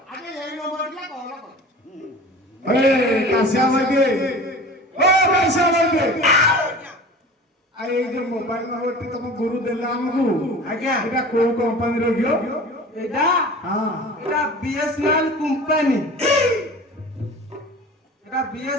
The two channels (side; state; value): both; normal; correlation 0.39